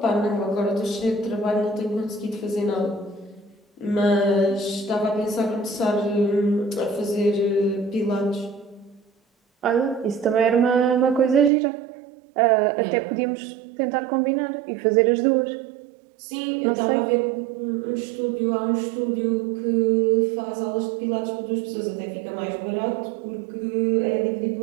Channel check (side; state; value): left; drops out; at 11.5 s